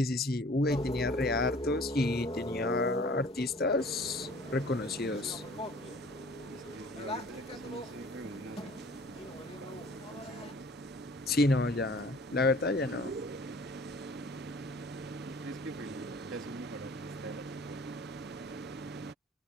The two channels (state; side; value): normal; both; correlation 0.50